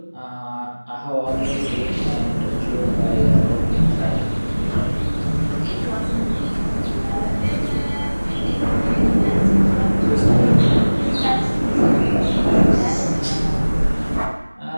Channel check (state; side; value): inverted; both; correlation -1.00